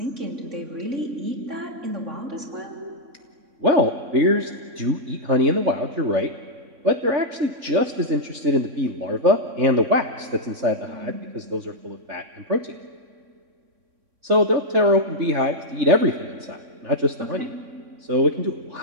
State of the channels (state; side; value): late; left; 3.6 ms